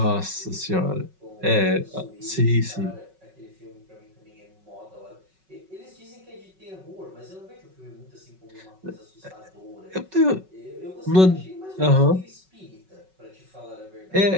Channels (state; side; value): late; left; 5.4 ms